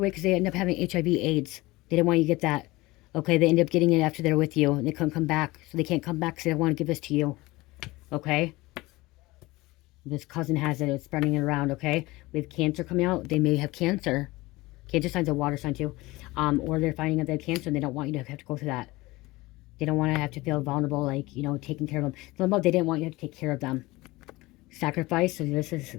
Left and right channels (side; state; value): right; quieter; 20.7 dB